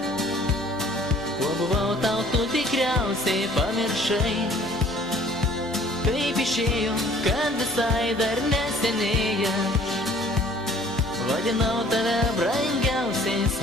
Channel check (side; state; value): both; normal; correlation 0.55